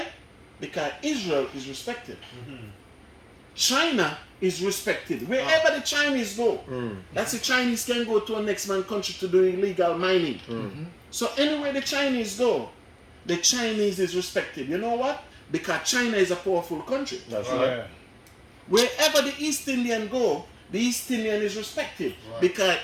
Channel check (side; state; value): both; identical; correlation 1.00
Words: Because Israel is respected. China is respected. Wherever the Chinese go, that's the Chinese can go to a next man country to do illegal mining. So anywhere the Chinese go, the Chinese is respected. You know what? Because China is a powerful country. That's right. Wherever the East Indian go, the East Indian is respected. Because